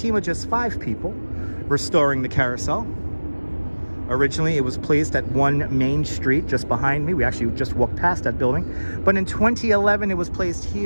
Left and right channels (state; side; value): inverted; both; correlation -1.00